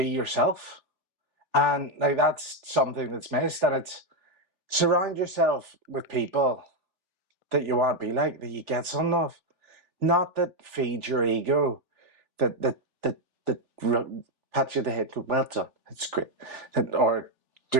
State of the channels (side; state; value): left; late; 3.4 ms